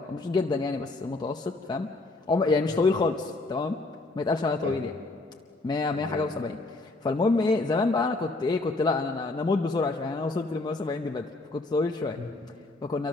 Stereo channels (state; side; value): quieter; right; 3.2 dB